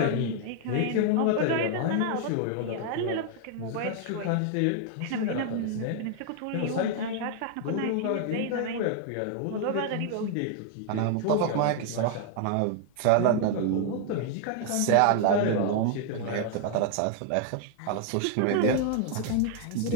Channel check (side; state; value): both; different; correlation 0.00